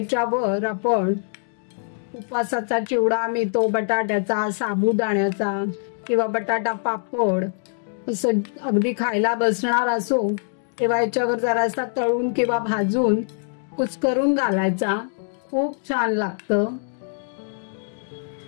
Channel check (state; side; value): silent; right; digital silence